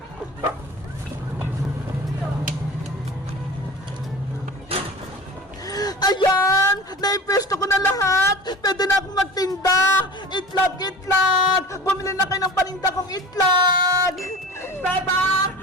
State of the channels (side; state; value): both; normal; correlation 0.36